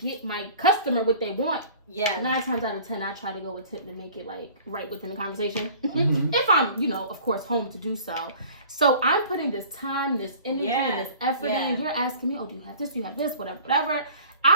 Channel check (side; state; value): both; inverted; correlation -0.47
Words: my customer what they want. Yeah. 9 times out of 10, I try to go with tip to make it like right within the conversation. If I'm, of course, home to do so. So I'm putting this time, this energy, and this effort in, and you're asking me, do you have this, whatever.